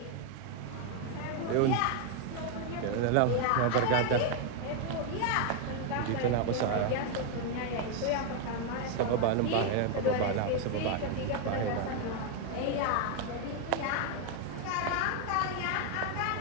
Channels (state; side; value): different; both; correlation 0.01